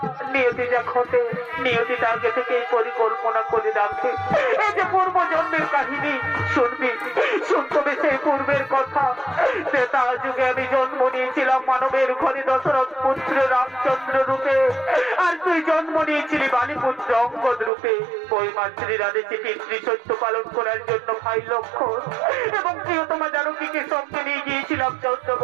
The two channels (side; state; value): left; drops out; at 17.7 s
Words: নিয়তি যা ঘটে নিয়তি আগে থেকেই পরিকল্পনা করে রাখে। এই যে পূর্ব জন্মের কাহিনী শুনবি, শুনতবে সেই পূর্বের কথা। ত্রেতা যুগে আমি জন্ম নিয়েছিলাম মানবের ঘরে দশরথ পুত্র রামচন্দ্র রূপে, আর তুই জন্ম নিয়েছিলি বালিপুত্র অঙ্গদ রূপে। ওই মাতৃর আদেশে পিতৃ সত্য পালন করার জন্য ভাই লক্ষণ এবং প্রিয়তমা জানকীকে সঙ্গে নিয়ে গিয়েছিলাম 14